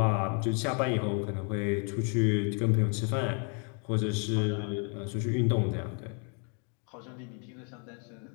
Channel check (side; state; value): right; quieter; 39.1 dB